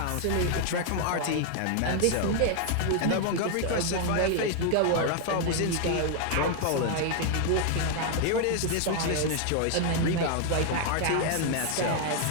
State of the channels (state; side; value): different; both; correlation 0.00